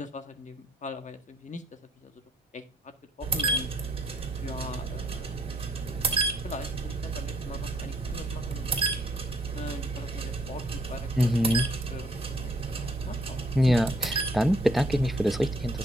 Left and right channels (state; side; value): normal; both; correlation 0.65